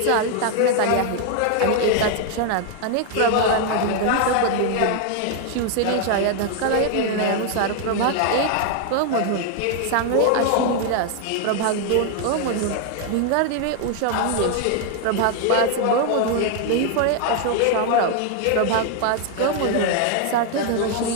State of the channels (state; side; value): different; both; correlation 0.00